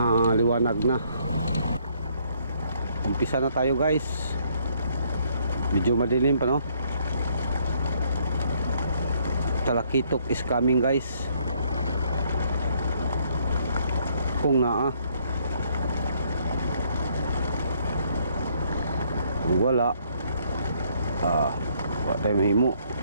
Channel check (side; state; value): both; inverted; correlation -0.66